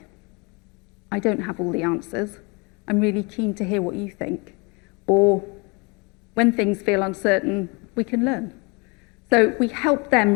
I don't have all the answers. I'm really keen to hear what you think. Or when things feel uncertain, we can learn. So we help them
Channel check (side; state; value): right; quieter; 29.3 dB